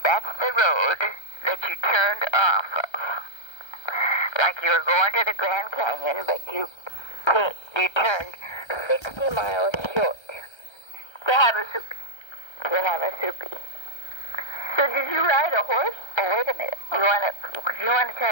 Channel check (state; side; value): late; right; 1.3 ms